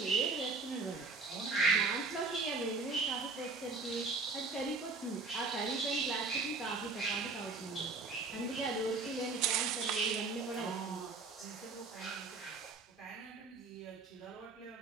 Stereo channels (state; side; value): quieter; left; 4.0 dB